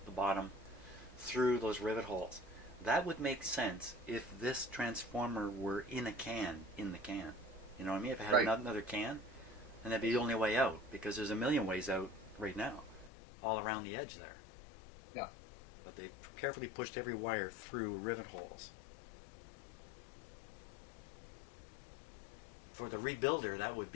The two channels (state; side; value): drops out; right; at 13.1 s